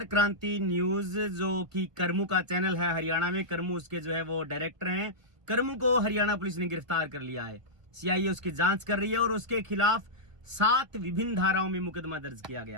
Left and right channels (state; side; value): late; left; 1.4 ms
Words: क्रांति न्यूज जो कि करमू का चैनल है हरियाणा में, करमू उसके जो है वो डायरेक्टर हैं। करमू को हरियाणा पुलिस ने गिरफ्तार कर लिया है। सीआईए उसकी जांच कर रही है और उसके खिलाफ 7 विभिन्न धाराओं में मुकदमा दर्ज किया